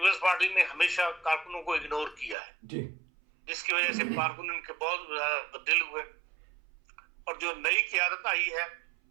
پارٹی نے ہمیشہ کارکنوں کو اگنور کیا ہے, جس کی وجہ سے کارکن ان کے بہت زیادہ دل ہوئے. اور جو نئی قیادت آئی ہے,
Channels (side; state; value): left; drops out; at 2.4 s